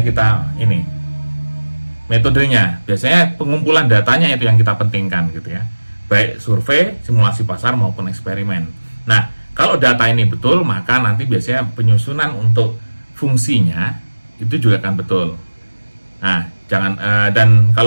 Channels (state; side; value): inverted; both; correlation -1.00